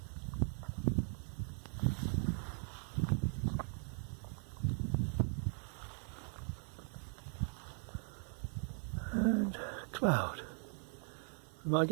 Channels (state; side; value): silent; left; 51 dB below the other